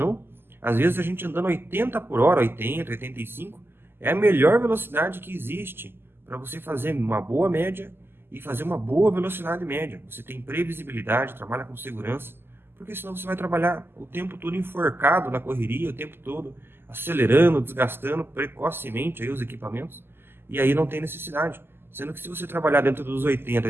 Às vezes a gente andando 80 por hora, 80, 85, é a melhor velocidade que existe para você fazer uma boa média e fazer uma boa velocidade média. Você tem previsibilidade, trabalha com segurança, porque senão você vai trabalhar o tempo todo enforcado na correria, o tempo todo acelerando, desgastando precocemente aí os equipamentos, e aí não tem necessidade. Sendo que se você trabalhar dentro dos 80,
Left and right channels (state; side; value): late; left; 0.11 ms